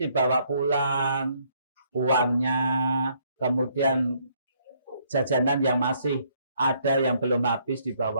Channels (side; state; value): both; inverted; correlation -0.68